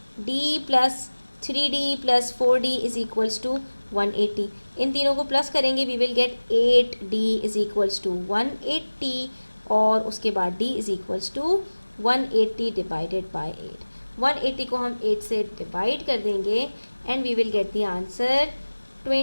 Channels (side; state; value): both; inverted; correlation -1.00